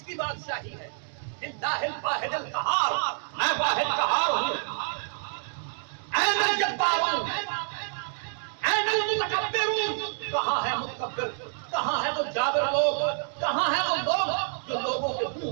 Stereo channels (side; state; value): left; silent; digital silence